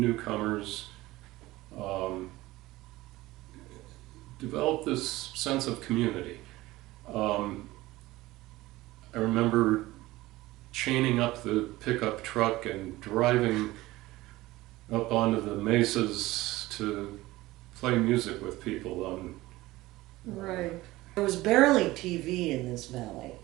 developed this sense of community. I remember chaining up the pickup truck and driving up onto the mesas to play music with people. Right. There was barely TV in this valley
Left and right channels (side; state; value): left; quieter; 18.4 dB